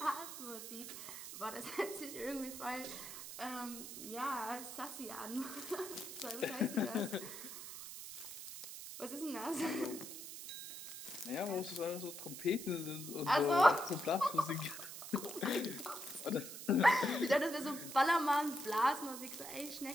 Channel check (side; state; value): right; noise; hiss, 10 dB below the sound